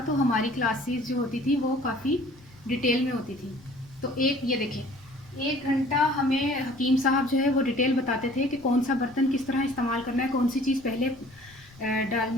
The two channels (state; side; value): noise; left; rumble, 25 dB below the sound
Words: तो हमारी क्लासेस जो होती थी वो काफ़ी डिटेल में होती थी। तो ये देखिए, 1 घंटा हमें हकीम साहब जो है वो डिटेल बताते थे कि कौन सा बर्तन किस तरह इस्तेमाल करना है, कौन सी चीज़ पहले